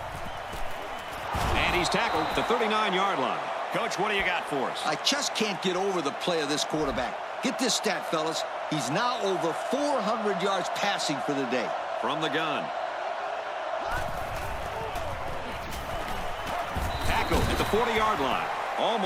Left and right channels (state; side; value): identical; both; correlation 1.00